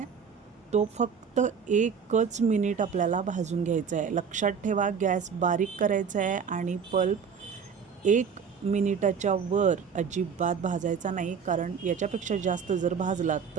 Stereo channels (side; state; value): left; quieter; 6.5 dB